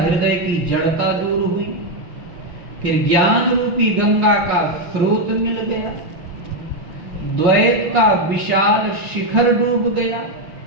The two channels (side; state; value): left; late; 5.7 ms